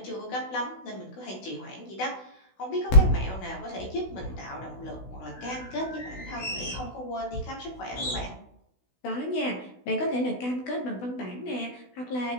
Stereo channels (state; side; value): late; right; 16 ms